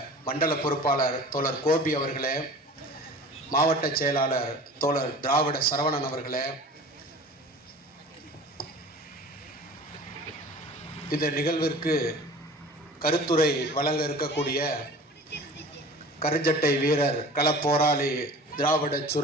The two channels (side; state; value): both; normal; correlation 0.41